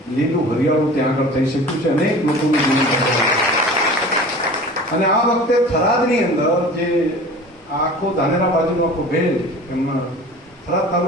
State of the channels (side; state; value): both; normal; correlation 0.40